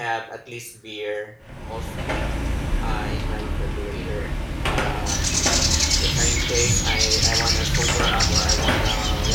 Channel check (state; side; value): identical; both; correlation 1.00